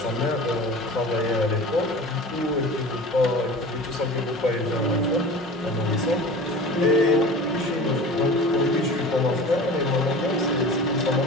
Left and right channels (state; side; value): normal; both; correlation 0.37